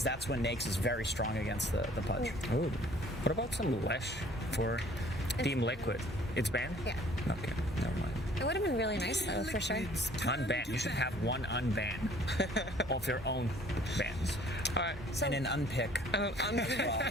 that's when Nakes is very strong against the Pudge. Ooh. What about some Lesh for Team Liquid? It's banned? Yeah. Okay, never mind. It would have been really nice, though, for sure. Unban. You should have one unban of your own bans. All right. So, and an unpick. Well,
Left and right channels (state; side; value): normal; both; correlation 0.55